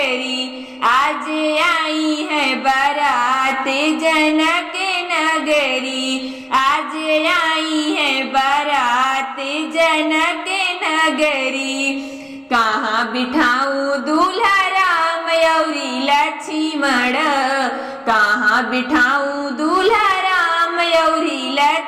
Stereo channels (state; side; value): identical; both; correlation 1.00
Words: आज आई है बारात जनक नगरी, आज आई है बारात जनक नगरी। कहाँ बिठाऊं दूल्हा राम औरी लक्ष्मण, कहाँ बिठाऊं दूल्हा राम औरी